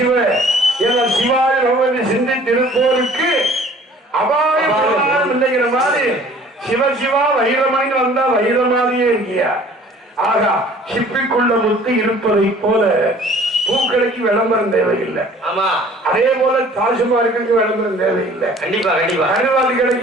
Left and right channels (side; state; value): both; normal; correlation 0.51